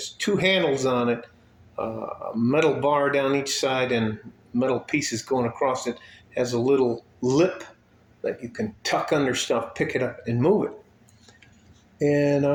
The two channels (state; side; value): identical; both; correlation 1.00